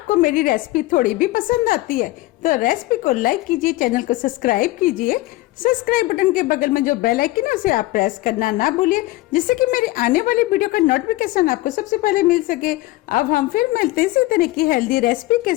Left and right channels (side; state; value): right; quieter; 18.9 dB